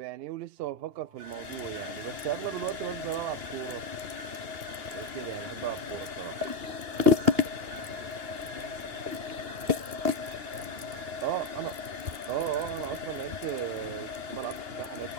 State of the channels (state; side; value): late; left; 2.8 ms